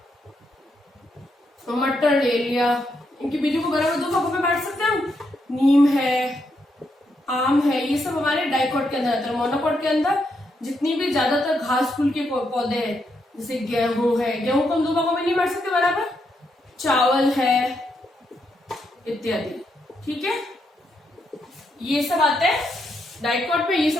मटर, ले लिया, इनके बीजों को बराबर 2 भागों में बांट सकते हैं हम। नीम है, आम है, ये सब हमारे डाइकोट के अंदर आता है। मोनोकोट के अंदर जितनी भी ज्यादातर घास फूल के पौधे हैं, जैसे गेहूं है, गेहूं को हम 2 भागों में नहीं बांट सकते बराबर, चावल है इत्यादि। ठीक है, ये सब आते हैं डाइकोट में, ये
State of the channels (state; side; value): normal; both; correlation 0.80